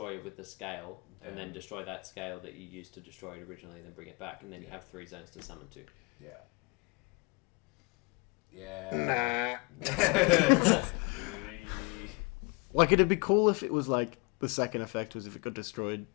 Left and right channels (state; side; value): quieter; right; 28.4 dB